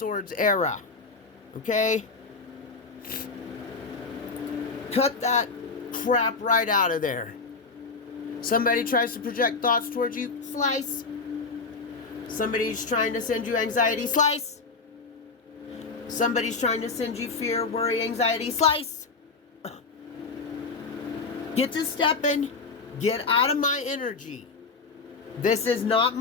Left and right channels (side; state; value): right; quieter; 4.4 dB